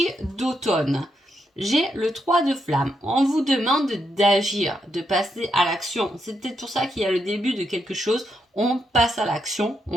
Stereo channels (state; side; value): normal; both; correlation 0.80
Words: d'automne, j'ai le 3 de flamme. On vous demande d'agir, de passer à l'action. C'est peut-être pour ça qu'il y a le début de quelque chose. On passe à l'action,